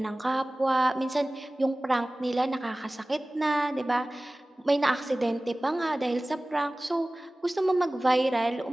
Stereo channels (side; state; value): both; normal; correlation 0.98